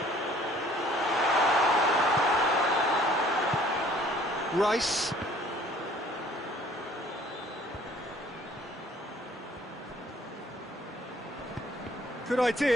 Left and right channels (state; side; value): normal; both; correlation 0.56